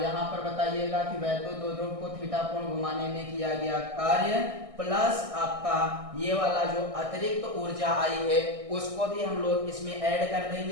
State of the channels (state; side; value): late; left; 1.6 ms